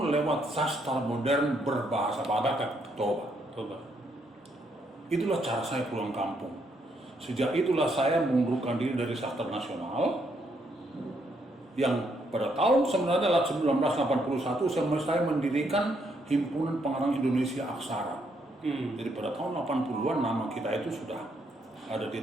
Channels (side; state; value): both; normal; correlation 0.74